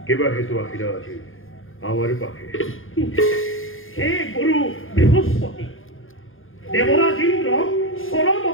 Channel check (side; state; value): right; late; 0.59 ms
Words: কেবা হেতু আহিলা আজি আমার পাখে? হে গুরু বৃহস্পতি, দেবরাজ ইন্দ্র চরম